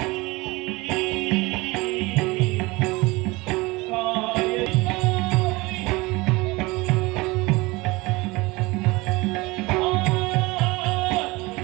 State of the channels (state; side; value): quieter; left; 22.9 dB